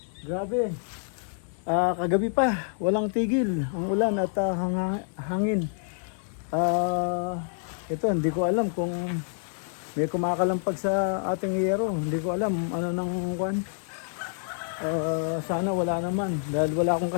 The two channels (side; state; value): right; silent; 56 dB below the other